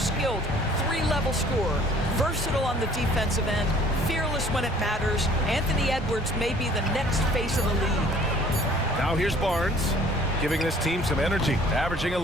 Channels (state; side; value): normal; both; correlation 0.54